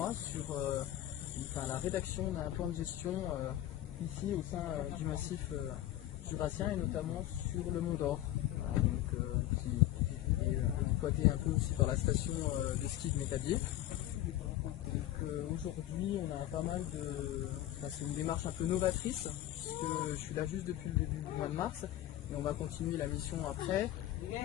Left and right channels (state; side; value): quieter; right; 13.7 dB